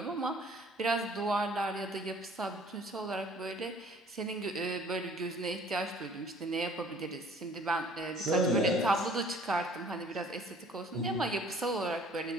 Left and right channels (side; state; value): both; normal; correlation 0.54